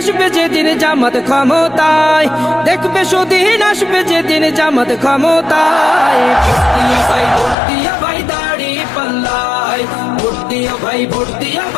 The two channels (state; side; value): drops out; right; at 7.6 s